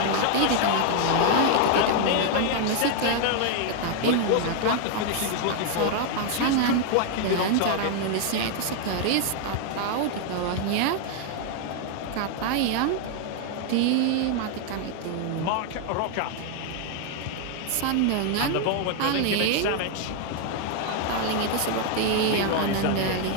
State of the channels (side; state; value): both; different; correlation 0.00